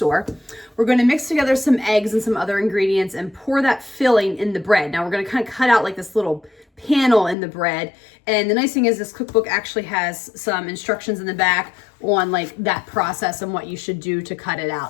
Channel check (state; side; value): drops out; right; at 7.4 s